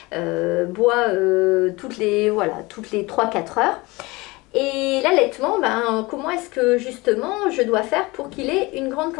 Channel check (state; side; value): quieter; right; 23.1 dB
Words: boit toutes les 3-4 heures. Et l'allaitement, comment est-ce que justement je dois faire pour qu'il ait une grande